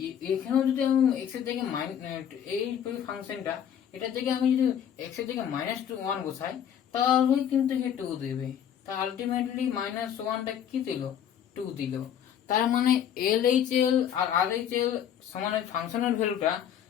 এখানেও যদি আমি এক্স এর জায়গায় এই ফাংশনটা, এটার জায়গায় আমি যদি এক্স এর জায়গায় -1 বসাই, তাহলে কিন্তু 2 দেবে। তা আলটিমেটলি -1টা কি দিল, 2 দিল। তার মানে LHL আর RHL সমান ফাংশনের ভ্যালুটা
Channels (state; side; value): quieter; right; 9.3 dB